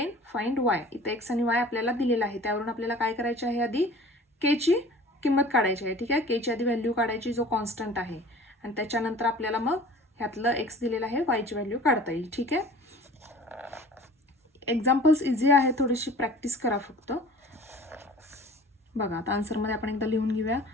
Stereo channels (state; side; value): normal; both; correlation 0.45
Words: find y. इथे x आणि y आपल्याला दिलेला आहे, त्यावरून आपल्याला काय करायचे आहे, आधी k ची किंमत काढायची आहे. ठीक आहे, k ची आधी व्हॅल्यू काढायची जो कॉन्स्टंट आहे, आणि त्याच्यानंतर आपल्याला मग ह्यातलं x दिलेलं आहे y ची व्हॅल्यू काढता येईल. ठीक आहे, एक्झाम्पल्स इझी आहे, थोडीशी प्रॅक्टिस करा फक्त. बघा आता आन्सरमध्ये आपण एकदा लिहून घेऊया.